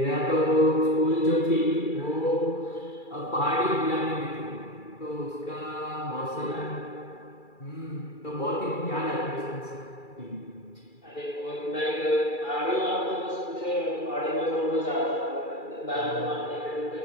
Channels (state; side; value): late; right; 2.3 ms